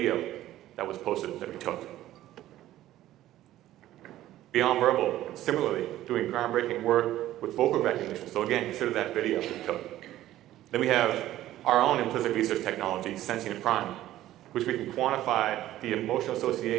that was posted that we took. Beyond Verbal, similarly, doing groundbreaking work with vocal recognition. So again, consider that video we took. Then we have our own implicit research technology, Sentient Prime, which we can quantify the emotional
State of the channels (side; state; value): left; quieter; 14.1 dB